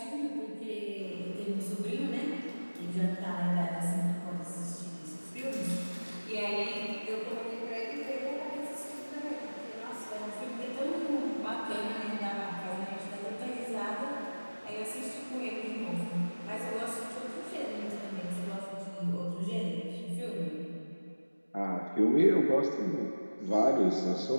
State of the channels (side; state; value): both; inverted; correlation -1.00